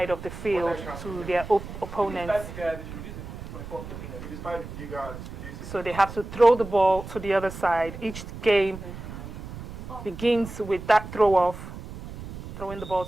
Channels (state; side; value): noise; right; rumble, 11 dB below the sound